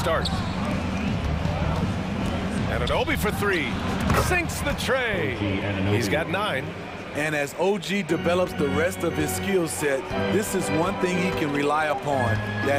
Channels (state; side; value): identical; both; correlation 1.00